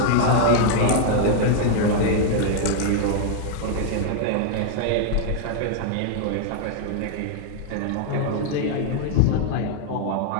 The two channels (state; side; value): different; both; correlation 0.00